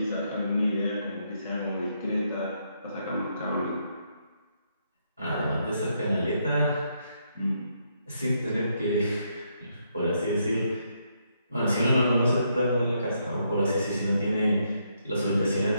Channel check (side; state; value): both; inverted; correlation -0.77